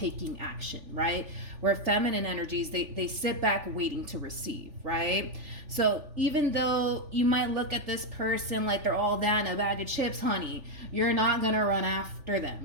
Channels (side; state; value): left; late; 3.4 ms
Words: action, right? Where feminine energies, they sit back waiting to receive, right? So even though you might look at this person like they're all that in a bag of chips, honey, you're not going to run after